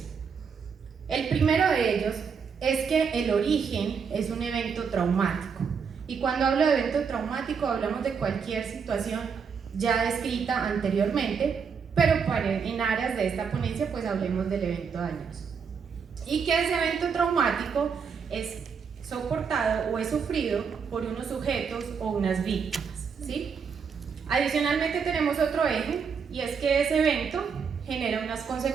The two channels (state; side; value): quieter; left; 6.2 dB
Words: El primero de ellos es que el origen es un evento traumático. Y cuando hablo de evento traumático hablamos de cualquier situación ya descrita anteriormente, pero en áreas de esta ponencia pues hablemos del evento dañoso. Y que ese evento traumático es soportado o es sufrido por unos sujetos o unas víctimas, ¿sí? Adicionalmente tenemos otro eje, y es que ese evento genera unas